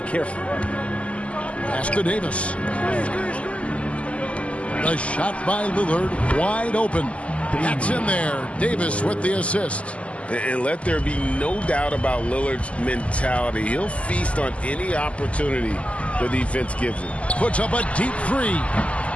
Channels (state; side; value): late; right; 0.062 ms